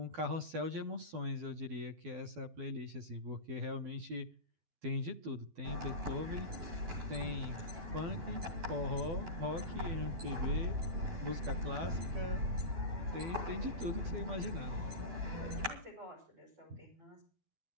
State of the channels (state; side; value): late; left; 12 ms